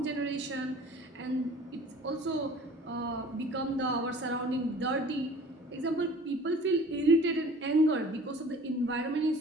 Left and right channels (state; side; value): normal; both; correlation 0.47